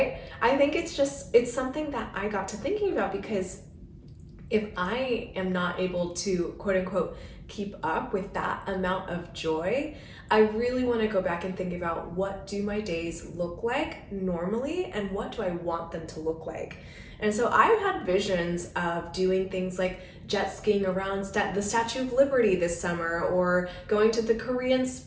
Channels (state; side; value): identical; both; correlation 1.00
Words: I think it's something that I got to thinking about, because if I am not able to, quote unquote, keep up with that amount of joy, I really want to go back and think about, what do my days look like normally and what do I want them to look like? And so I've had visions of doing things like jet skiing around the Statue of Liberty this summer, or going to the Korean